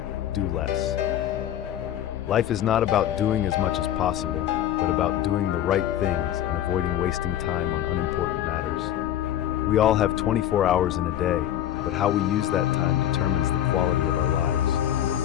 do less. Life is not about doing as much as possible, but about doing the right things and avoiding wasting time on unimportant matters. We all have 24 hours in a day, but how we use that time determines the quality of our lives.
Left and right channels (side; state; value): right; quieter; 11.5 dB